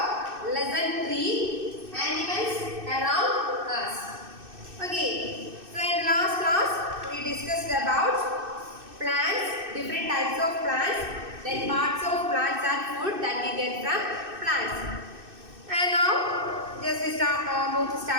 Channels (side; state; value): left; late; 2.6 ms